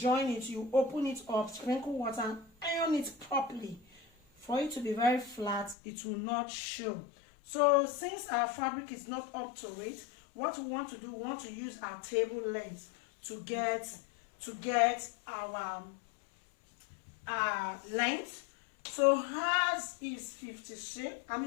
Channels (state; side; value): drops out; right; at 5.8 s